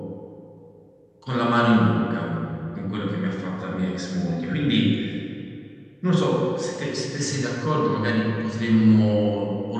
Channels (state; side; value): identical; both; correlation 1.00